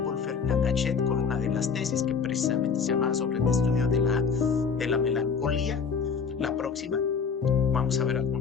Ferdinand Gachet con una de las tesis que precisamente se llama sobre el estudio de la melancolía. La próxima, vamos a ver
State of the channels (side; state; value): right; quieter; 5.8 dB